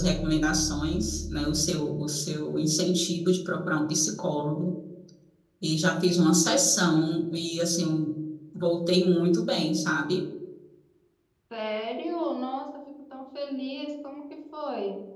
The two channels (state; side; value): identical; both; correlation 1.00